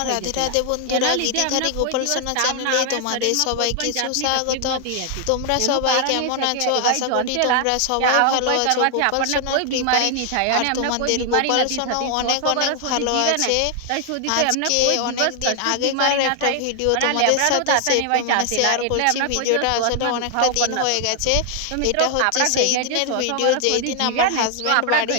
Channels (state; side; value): different; both; correlation 0.00